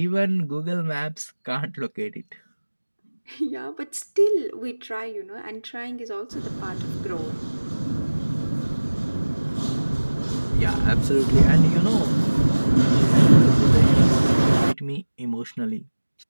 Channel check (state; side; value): inverted; both; correlation -1.00